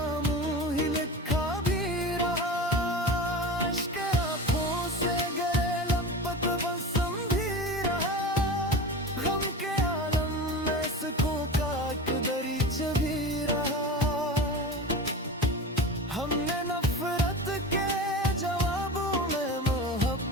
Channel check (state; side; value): normal; both; correlation 0.30